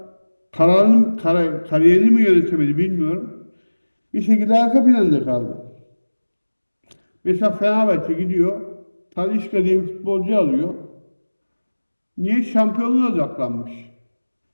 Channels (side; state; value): both; inverted; correlation -1.00